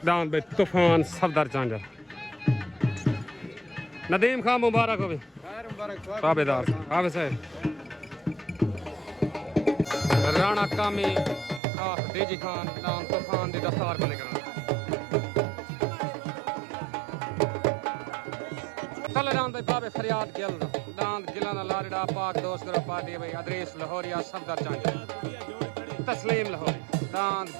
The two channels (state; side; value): drops out; left; at 11.6 s